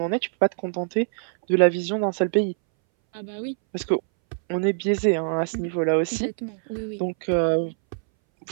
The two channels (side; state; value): left; silent; 61 dB below the other